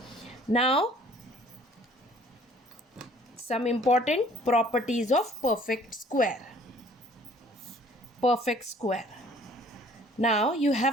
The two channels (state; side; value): normal; both; correlation 0.56